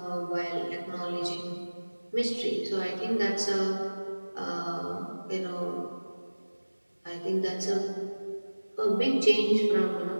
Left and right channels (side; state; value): both; inverted; correlation -1.00